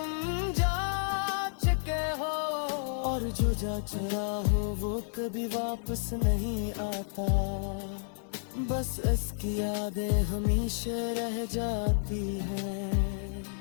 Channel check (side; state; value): right; silent; 57 dB below the other